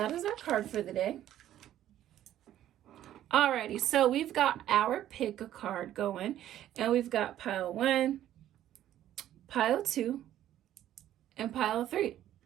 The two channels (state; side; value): quieter; left; 12.2 dB